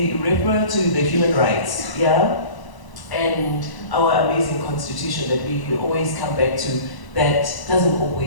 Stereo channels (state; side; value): late; right; 1.0 ms